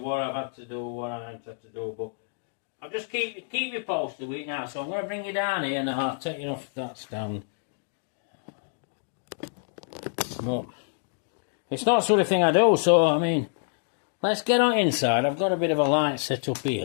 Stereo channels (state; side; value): silent; right; digital silence